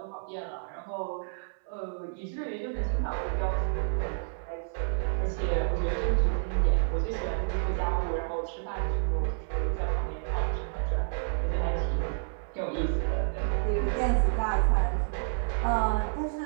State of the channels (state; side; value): silent; left; 58 dB below the other